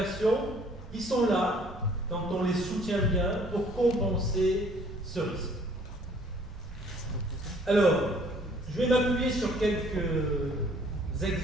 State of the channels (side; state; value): both; normal; correlation 0.58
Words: qui sont là, quand on les soutient bien, pour compenser ce risque. Alors, je vais m'appuyer sur quelques